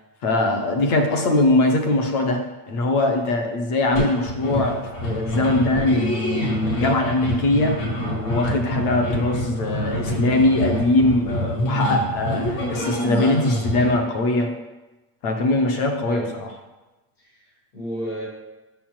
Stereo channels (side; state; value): right; late; 8.6 ms